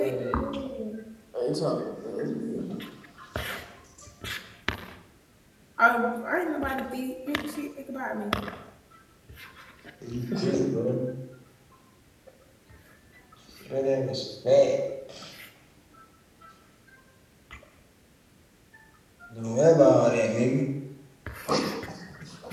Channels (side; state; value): both; identical; correlation 1.00